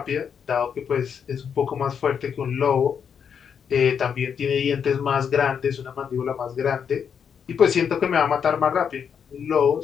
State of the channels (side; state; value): right; quieter; 7.3 dB